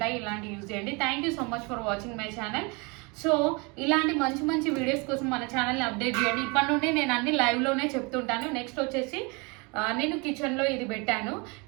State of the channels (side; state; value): left; quieter; 29.2 dB